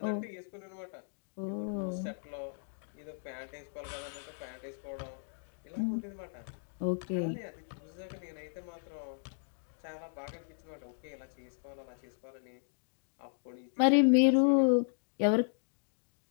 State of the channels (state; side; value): silent; right; digital silence